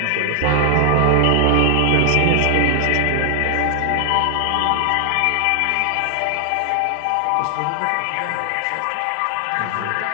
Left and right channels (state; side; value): different; both; correlation 0.00